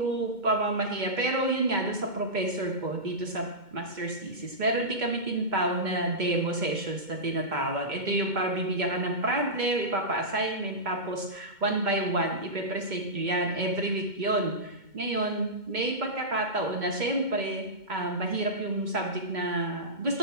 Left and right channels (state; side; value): late; left; 2.2 ms